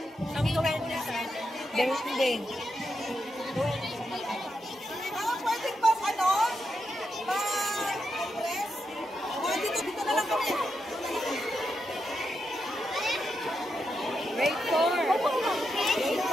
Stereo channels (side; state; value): both; normal; correlation 0.85